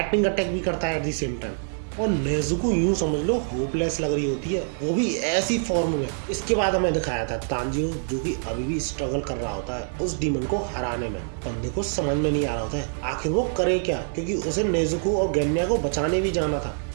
अटैक भी करता है एट द सेम टाइम। और नेजुको यूं समझ लो होपलेस लग रही होती है, वो भी ऐसी फॉर्म में। इसके बाद हमें दिखाया था तांजीरो, जो कि अभी भी स्ट्रगल कर रहा होता है उस डीमन को हराने में। बंदे को समझ में नहीं आ रहा होता है आखिर वो करे क्या, क्योंकि उसे नेजुको और गेन्या को बचाने भी जाना था।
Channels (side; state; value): left; silent; digital silence